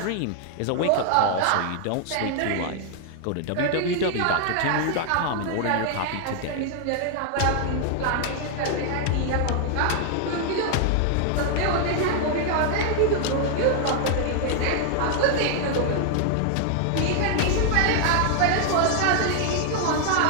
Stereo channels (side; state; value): both; different; correlation 0.00